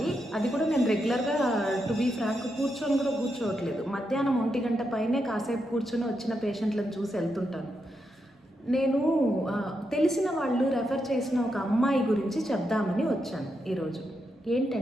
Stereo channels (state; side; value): normal; both; correlation 0.84